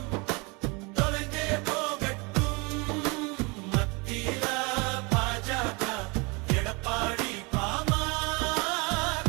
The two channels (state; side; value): quieter; left; 28.7 dB